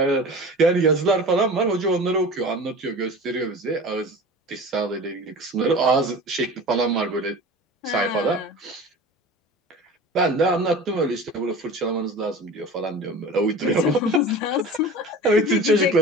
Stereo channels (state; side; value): normal; both; correlation 0.36